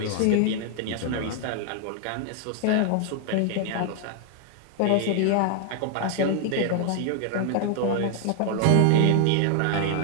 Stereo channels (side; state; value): both; different; correlation 0.00